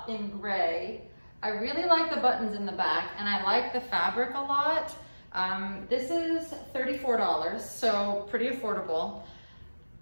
in gray. I really like the buttons in the back and I like the fabric a lot. This is $34, so pretty affordable.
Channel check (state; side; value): inverted; both; correlation -1.00